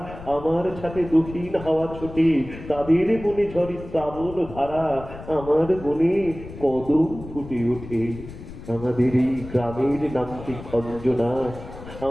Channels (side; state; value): left; noise; rumble, 14 dB below the sound